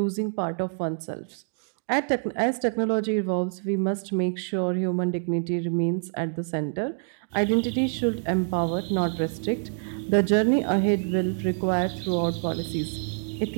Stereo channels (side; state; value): left; silent; 61 dB below the other